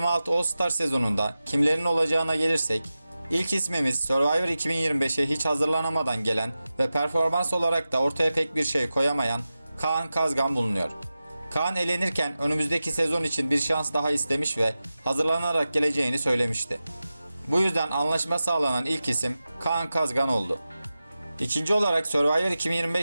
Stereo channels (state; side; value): inverted; both; correlation -0.94